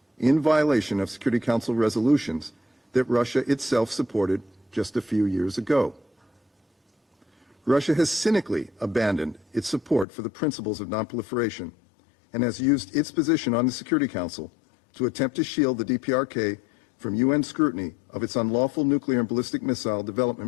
in violation of Security Council resolutions that Russia itself supported just a few years ago. Russia has cynically abandoned its support for the principles of nonproliferation and has used its position on the Security Council to attempt to shield the DPRK from UN scrutiny of its unlawful nuclear and ballistic missile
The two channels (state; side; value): drops out; right; at 10.1 s